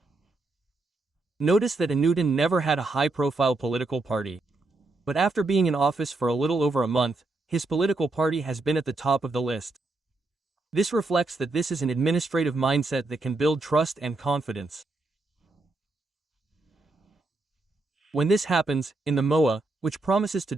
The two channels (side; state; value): left; quieter; 3.2 dB